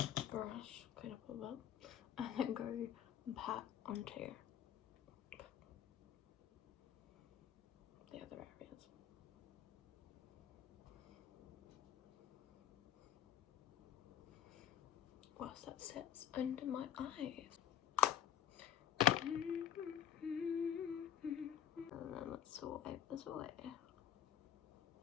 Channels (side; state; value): right; quieter; 10.2 dB